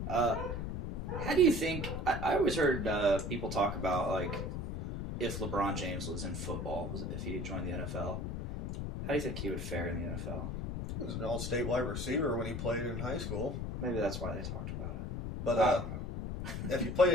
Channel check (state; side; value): noise; left; rumble, 4 dB below the sound